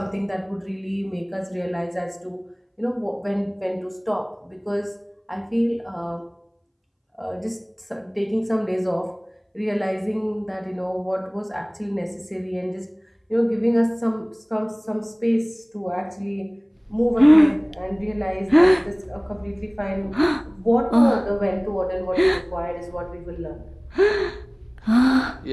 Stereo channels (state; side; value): identical; both; correlation 1.00